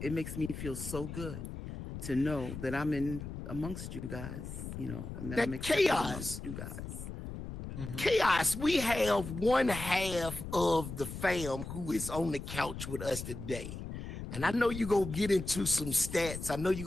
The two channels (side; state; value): left; noise; rumble, 8 dB below the sound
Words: makes me feel so good to know that I'm in amongst you guys, you know, and that I'm accepted amongst you guys. Chaos, we have one half of the fam who is on the couch with us today. And I know you're going to get into some stats. I know